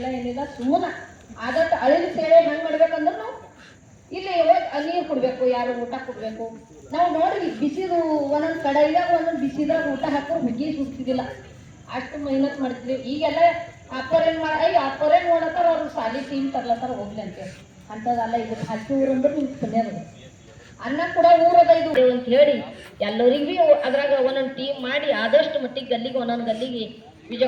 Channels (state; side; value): identical; both; correlation 1.00